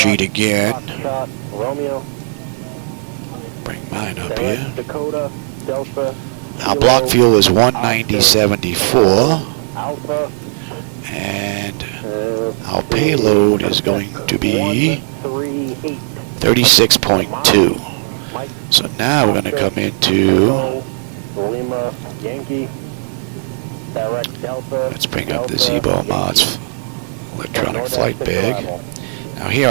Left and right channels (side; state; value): left; silent; 57 dB below the other